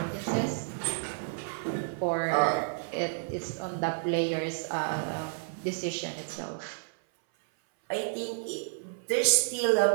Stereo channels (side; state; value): left; silent; 58 dB below the other